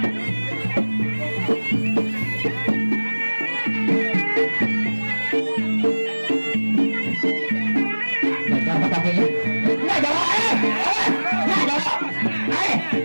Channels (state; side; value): inverted; both; correlation -1.00